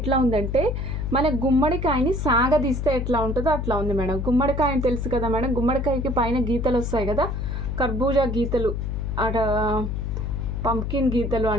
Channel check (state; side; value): noise; left; hum, 2 dB below the sound